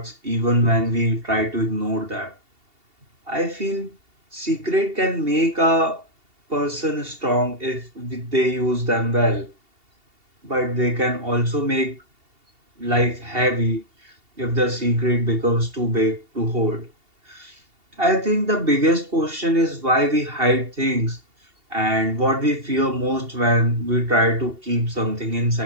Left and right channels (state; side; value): late; left; 2.7 ms